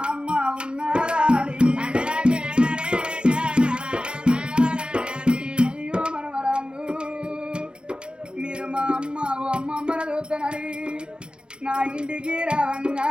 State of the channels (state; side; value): late; left; 0.052 ms